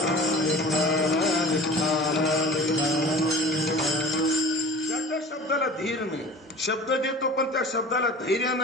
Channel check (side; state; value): both; normal; correlation 0.40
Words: ज्याच्या शब्दाला धीर नाही, शब्द देतो पण त्या शब्दाला धैर्य